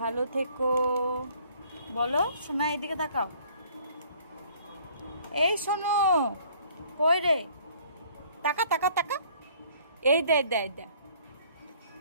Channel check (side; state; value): both; inverted; correlation -0.58